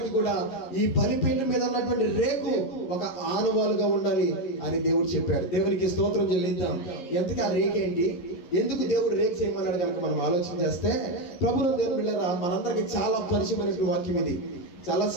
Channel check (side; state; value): right; late; 11 ms